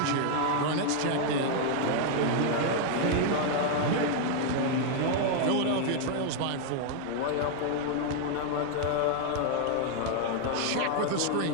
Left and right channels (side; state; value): both; different; correlation 0.00